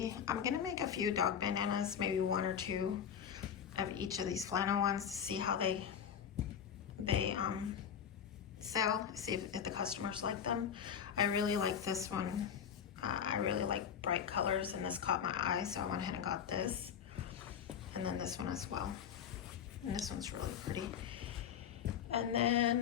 I'm gonna make a few dog bandanas, maybe 1 or 2 of each of these flannel ones to see how they sell, see if the customers like them. I really like this one. I really like bright colors and this caught my eye, so I went ahead and got this. And then this one as well. And this one's really pretty. And then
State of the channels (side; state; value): right; quieter; 8.1 dB